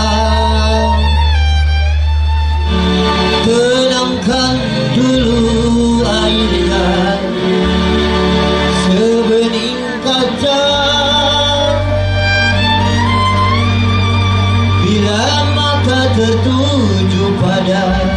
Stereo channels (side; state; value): both; identical; correlation 1.00